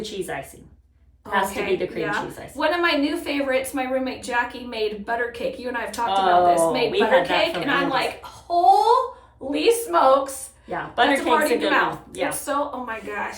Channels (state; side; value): identical; both; correlation 1.00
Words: cheese icing. Has to be the cream cheese icing. One of my new favorites, my roommate Jackie made butter cake. You and I have talked about this. Made butter cake, and I'm like, holy smokes. Yeah, butter That's a party cake's a in your good mouth. one. Yeah. It's so, oh my